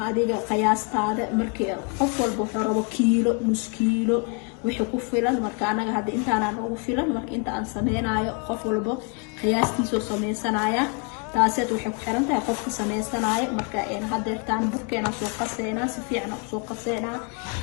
adiga qiyaastaada markii qof walba wuxuu rabo kiilo nus kiilo wixii ku filan marka anaga hadda intaan ugu filan marka inta aan sameynayo qof walba qiyaastiisa sameeysanaya taasad waxay ku xiran tahay qofka sameeysanaya marka hadeertaan burkeena soo qaseena si fiican u soo qaseena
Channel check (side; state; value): right; quieter; 35.4 dB